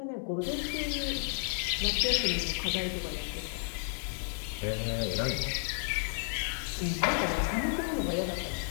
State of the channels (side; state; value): right; silent; digital silence